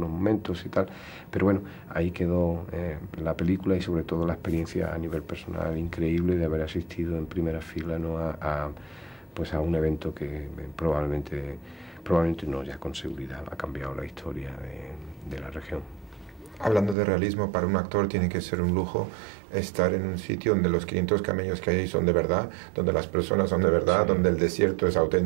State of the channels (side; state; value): left; drops out; at 16.9 s